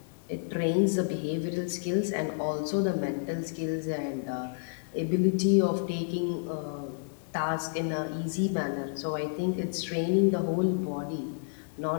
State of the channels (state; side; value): silent; right; digital silence